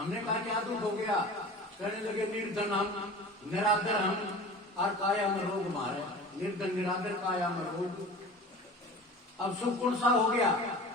कहा क्या दुख हो गया? कहने लगे निर्धन हम, निरादर हम, और काया में रोग मारे। निर्धन निरादर काया में रोग, अब सुख कौन सा हो गया?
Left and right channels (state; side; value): normal; both; correlation 0.38